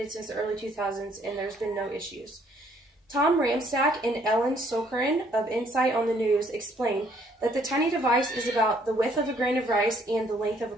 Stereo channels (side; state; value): both; normal; correlation 0.65